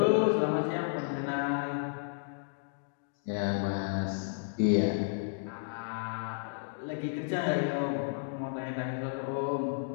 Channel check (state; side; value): silent; right; digital silence